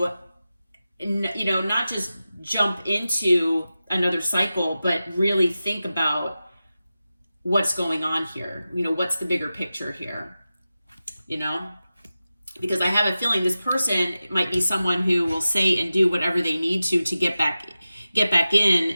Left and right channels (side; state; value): both; inverted; correlation -0.94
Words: not just jump into another cycle, but really think about what's going on here. What's the bigger picture here, because I have a feeling this person might be someone who will say and do whatever they need to get back get back